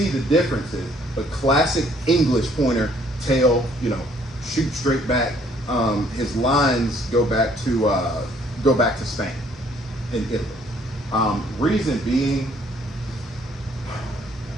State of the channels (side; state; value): both; normal; correlation 0.63